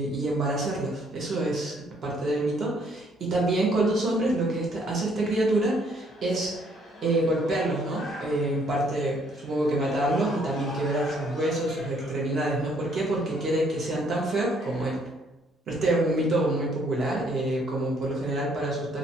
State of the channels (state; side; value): normal; both; correlation 0.66